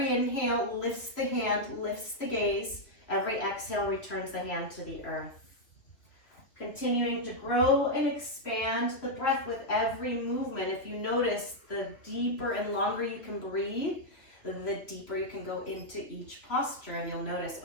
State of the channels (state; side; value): late; right; 2.8 ms